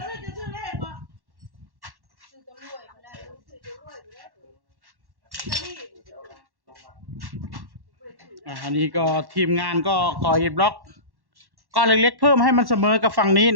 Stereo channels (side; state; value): left; late; 1.1 ms